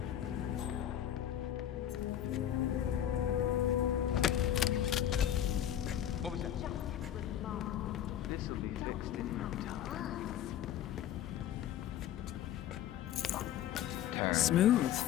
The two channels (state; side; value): quieter; right; 11.0 dB